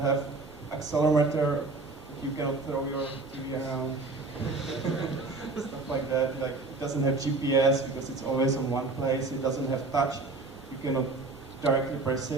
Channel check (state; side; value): quieter; left; 3.6 dB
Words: accelerometer, you cannot throw your TV around, stuff like that. Like it doesn't have GPS because it's always in one place, it doesn't have touch, you cannot directly press